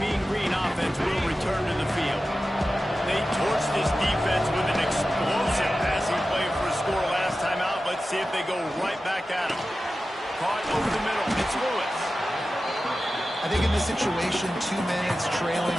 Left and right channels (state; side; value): normal; both; correlation 0.94